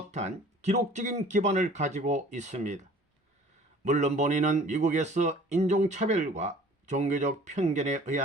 기록적인 기반을 가지고 있습니다. 물론 본인은 미국에서 인종차별과 종교적 편견에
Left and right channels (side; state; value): both; normal; correlation 0.49